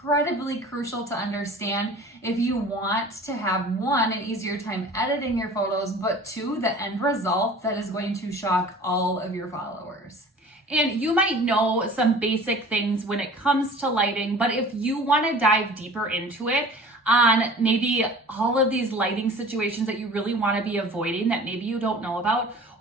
crucial to understand if you want to have, one, an easier time editing your photos, but two, the end result that is going to shock all of your followers. And you might know some basic things when it comes to lighting, but if you want to dive deeper into it, on maybe all of these lighting situations that you really want to be avoiding that maybe you don't know about,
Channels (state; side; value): normal; both; correlation 0.44